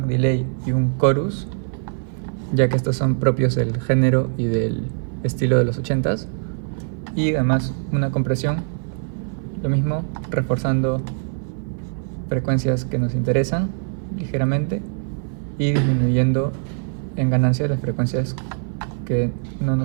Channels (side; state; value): left; silent; 56 dB below the other